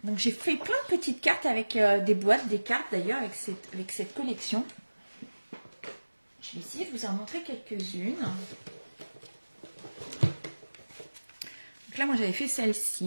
donc j'ai fait plein de petites cartes avec des boîtes, des cartes d'ailleurs avec cette collection. Je vais essayer de vous en montrer quelques-unes. Donc là moi j'avais fait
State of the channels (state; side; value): inverted; both; correlation -1.00